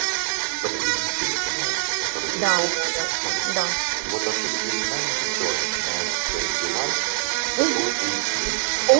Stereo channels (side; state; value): left; silent; digital silence